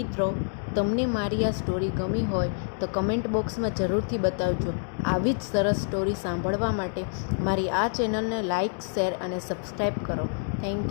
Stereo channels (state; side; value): silent; right; 60 dB below the other